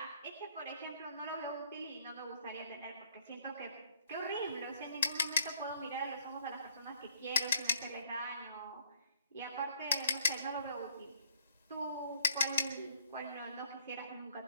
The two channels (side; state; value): both; inverted; correlation -0.62